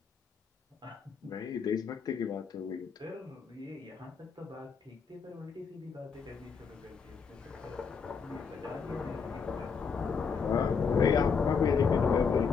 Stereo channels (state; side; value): quieter; right; 5.8 dB